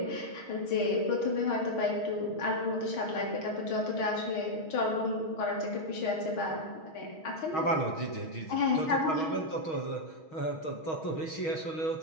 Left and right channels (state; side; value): late; right; 6.3 ms